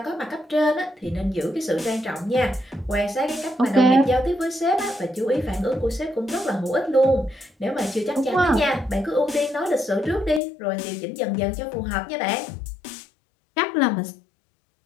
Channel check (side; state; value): right; drops out; at 10.4 s